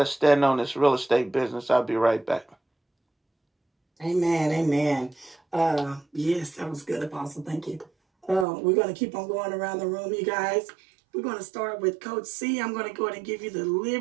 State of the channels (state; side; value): drops out; left; at 8.5 s